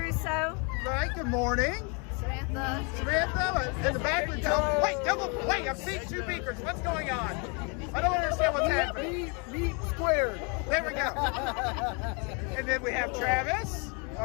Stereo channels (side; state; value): right; quieter; 34.1 dB